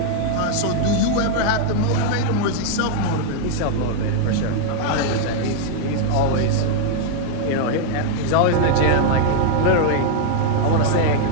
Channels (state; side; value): different; both; correlation 0.00